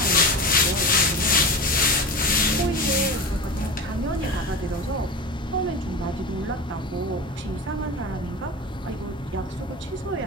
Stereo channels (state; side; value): normal; both; correlation 0.28